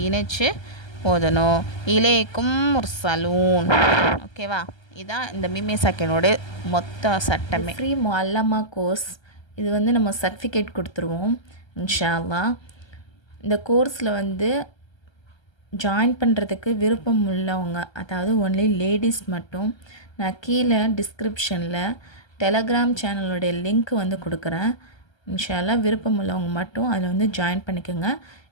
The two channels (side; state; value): right; late; 1.3 ms